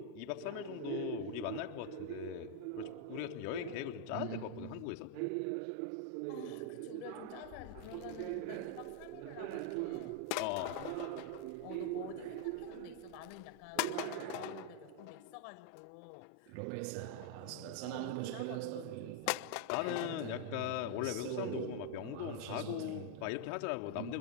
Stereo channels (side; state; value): both; different; correlation 0.00